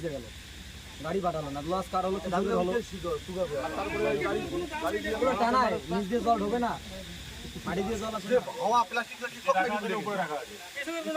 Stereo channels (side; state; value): both; identical; correlation 1.00